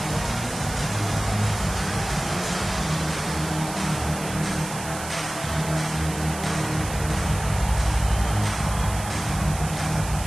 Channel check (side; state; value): right; noise; hiss, 10 dB below the sound